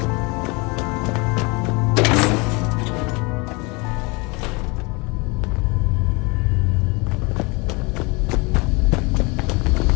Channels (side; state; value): right; quieter; 27.8 dB